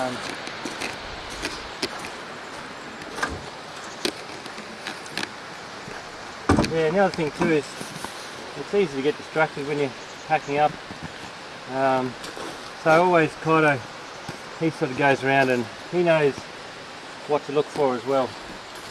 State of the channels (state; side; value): identical; both; correlation 1.00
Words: Yeah, and the other thing too is it's easy to get distracted when you're packing up. So always Kaito, he sort of goes around and he knows what to look for as well.